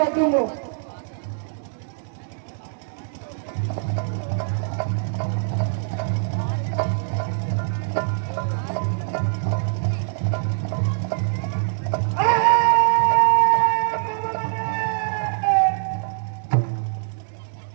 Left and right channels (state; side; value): silent; left; digital silence